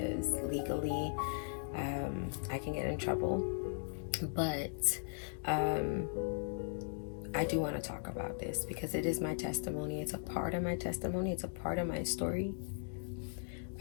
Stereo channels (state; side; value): silent; right; digital silence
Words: legally I can get in trouble, but I do want to talk about this because it is my testimony. It's a part of my testimony. It's a part of my story.